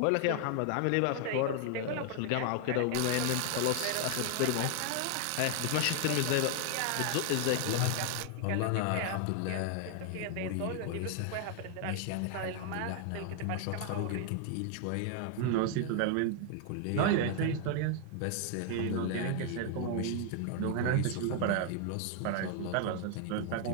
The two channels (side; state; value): both; different; correlation 0.00